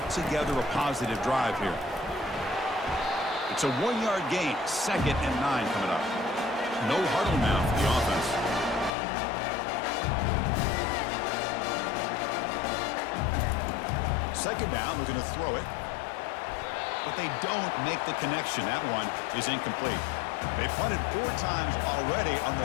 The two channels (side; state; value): right; drops out; at 8.9 s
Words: together a positive drive here. It's a 1-yard gain, 2nd and 9 coming up. No huddle now for the offense. second down, looking to throw it. But they don't make the connection. That one is incomplete. They punted 4 times already, on